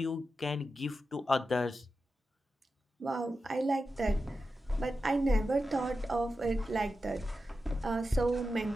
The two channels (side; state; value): both; normal; correlation 0.91